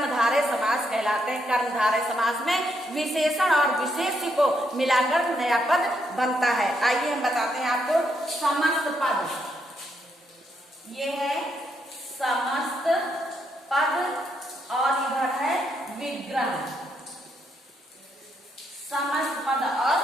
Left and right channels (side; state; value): both; normal; correlation 0.77